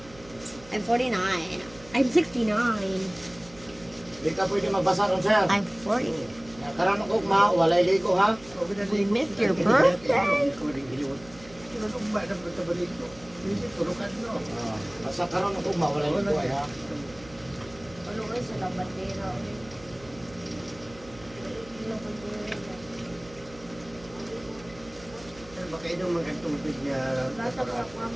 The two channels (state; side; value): noise; right; hum, 21 dB below the sound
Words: I'm 49. I'm 69. Di ka pwede magbasa ron, sir. I'm 40. Karon ko ma, walay ligo ha. We missed your birthday. Basta karon ko ma, walay ligo ay ha. Ano kayo sa labandera? Baka inom mga tubig niya. Bata pa